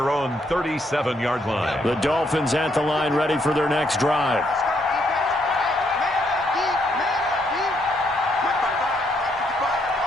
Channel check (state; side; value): normal; both; correlation 0.73